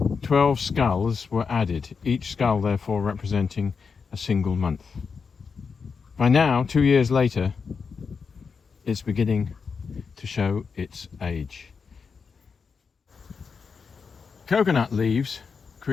12 skulls were added, each skull therefore representing a single month. By now, 2 years later, it's beginning to show its age. Coconut leaves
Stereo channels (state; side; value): quieter; right; 5.5 dB